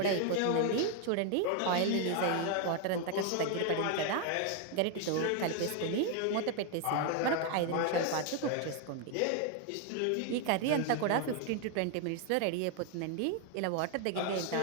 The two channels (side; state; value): both; different; correlation 0.01